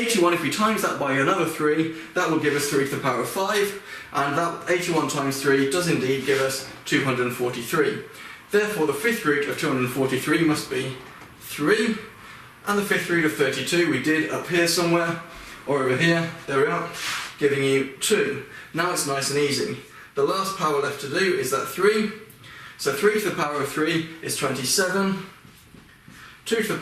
if we times that by another 3, that will give us 3 to the power of 5, and that 81 times 3 does indeed give us 243. Therefore the 5th root of 243 must be 3. And the fifth root of 32 we did up here somewhere, or over here, there we are, giving you 2. Now it's nice and easy. The last power left to do is that 3. So 3 to the power of 3 is 27. 2 to the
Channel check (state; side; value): identical; both; correlation 1.00